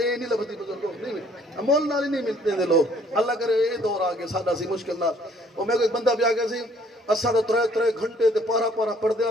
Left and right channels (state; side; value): normal; both; correlation 0.61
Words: ਨਹੀਂ ਲੱਭਦੀ ਬਜ਼ੁਰਗੋ, ਨਹੀਂ ਅਮੋਲ ਨਾਲ ਹੀ ਨਹੀਂ ਮਿਲਦੇ ਨੇ ਲੋਕ। ਅੱਲਾ ਕਰੇ ਇਹ ਦੌਰ ਆ ਗਿਆ ਸਾਡਾ ਸੀ ਮੁਸ਼ਕਿਲ ਨਾਲ। ਉਹ ਮੇਰੇ ਕੋਲ ਇੱਕ ਬੰਦਾ ਵੀ ਆ ਗਿਆ ਸੀ, ਅਸਾਂ ਤਾਂ 3 ਘੰਟੇ ਤੇ ਪਾਰਾ ਪਾਰਾ